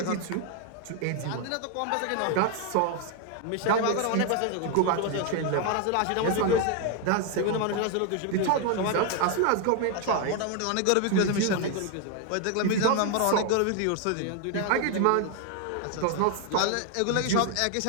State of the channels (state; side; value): different; both; correlation 0.01